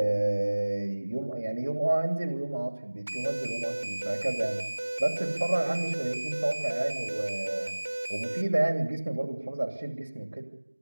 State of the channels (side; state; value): both; inverted; correlation -1.00